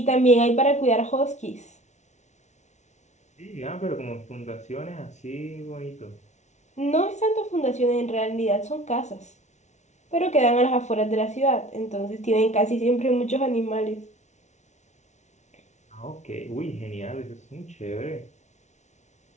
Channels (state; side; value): late; right; 0.33 ms